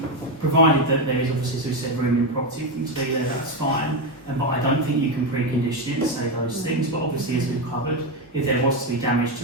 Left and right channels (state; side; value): normal; both; correlation 0.10